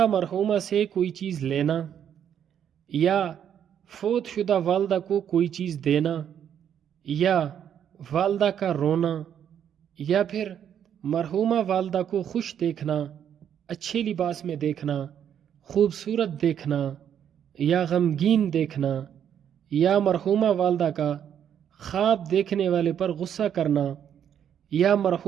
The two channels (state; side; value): quieter; left; 9.1 dB